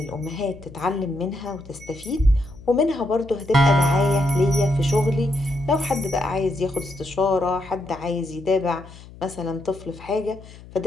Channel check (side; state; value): left; noise; hum, 19 dB below the sound